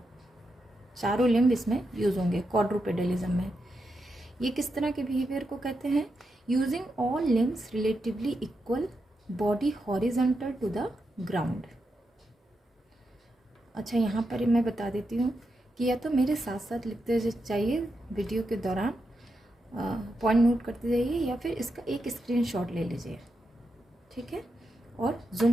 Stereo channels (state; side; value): normal; both; correlation 0.85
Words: चारों लिम्ब इसमें यूज होंगे क्वाड्रूपेडलिज्म में। ये किस तरह के बिहेवियर को कहते हैं, using all limbs relatively equal, body horizontal to the ground. अच्छा, यहाँ पर मैं बता देती हूँ कि या तो मेरे साथ साथ लिखते चाहिए वीडियो के दौरान, पॉइंट नोट करते जाइए, या फिर इसका एक स्क्रीनशॉट ले लीजिए। ठीक है, और